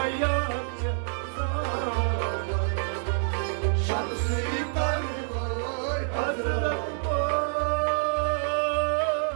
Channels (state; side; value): silent; left; digital silence